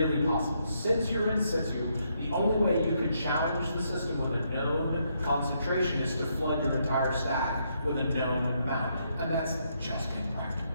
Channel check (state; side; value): inverted; both; correlation -0.76